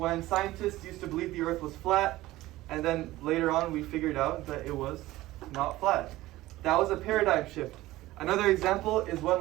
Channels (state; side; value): quieter; left; 17.2 dB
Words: scientists used to believe the earth was flat, and then later on we figured out that it was not flat. That was a paradigm shift. Another example is when